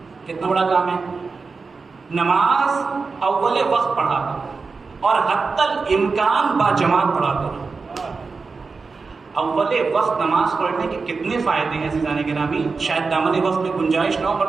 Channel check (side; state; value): left; quieter; 4.5 dB